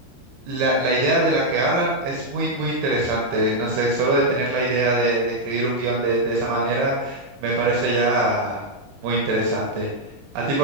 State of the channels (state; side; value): late; left; 22 ms